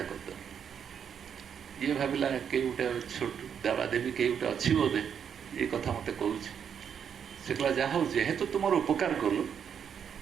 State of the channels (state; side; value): quieter; left; 7.8 dB